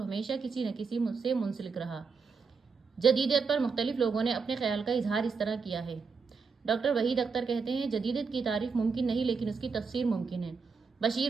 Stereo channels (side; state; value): left; quieter; 5.1 dB